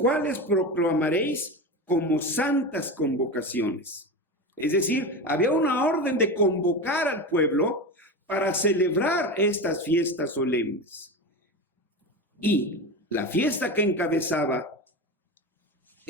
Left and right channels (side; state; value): both; normal; correlation 0.23